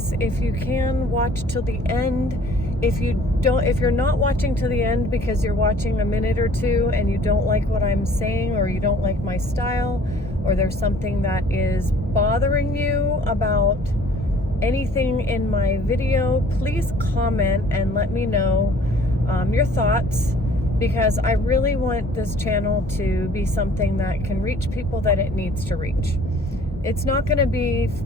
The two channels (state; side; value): normal; both; correlation 0.54